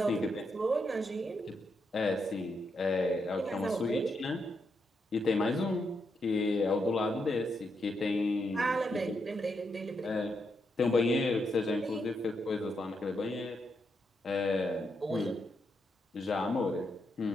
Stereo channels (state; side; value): normal; both; correlation 0.81